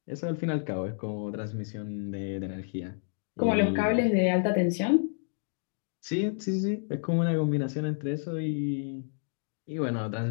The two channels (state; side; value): silent; right; digital silence